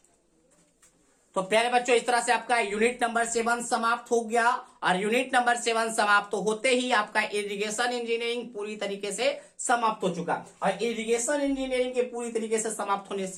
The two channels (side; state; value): both; identical; correlation 1.00